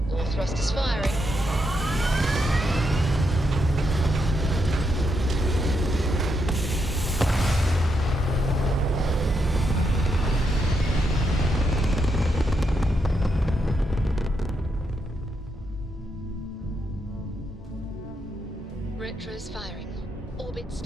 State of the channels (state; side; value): normal; both; correlation 0.80